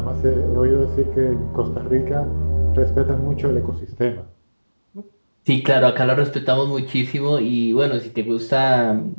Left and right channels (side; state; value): both; inverted; correlation -1.00